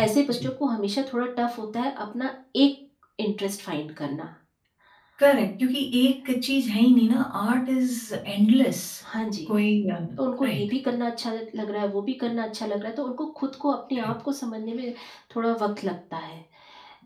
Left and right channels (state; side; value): identical; both; correlation 1.00